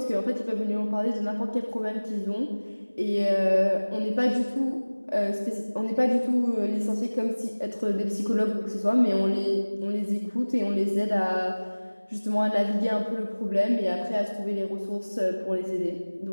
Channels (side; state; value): both; inverted; correlation -1.00